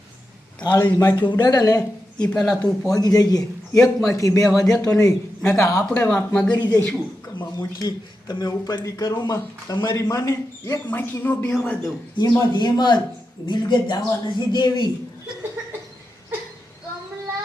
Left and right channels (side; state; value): both; normal; correlation 0.88